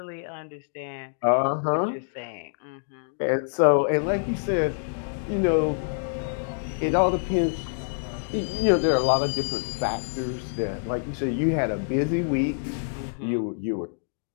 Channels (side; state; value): right; silent; digital silence